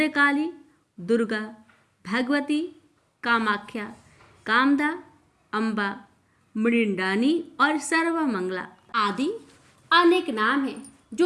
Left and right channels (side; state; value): both; identical; correlation 1.00